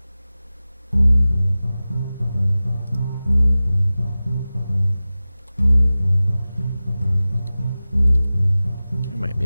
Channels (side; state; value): both; inverted; correlation -0.96